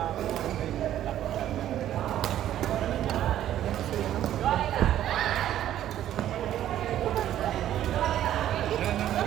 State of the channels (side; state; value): left; quieter; 11.9 dB